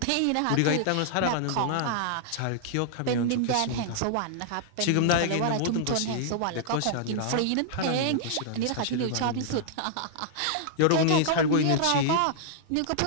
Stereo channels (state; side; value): different; both; correlation -0.01